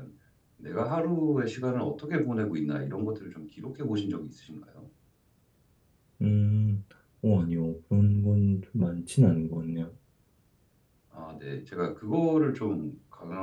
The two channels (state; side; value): identical; both; correlation 1.00